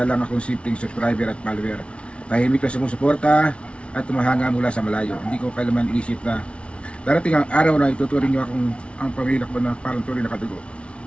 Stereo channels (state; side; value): late; right; 0.060 ms